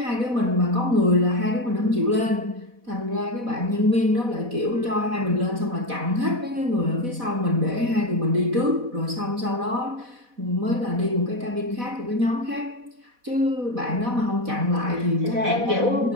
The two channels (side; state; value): left; late; 4.1 ms